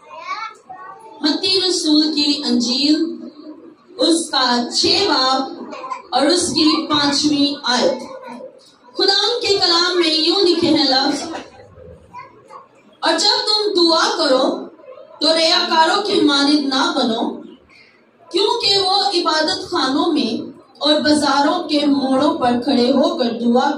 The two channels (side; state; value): both; identical; correlation 1.00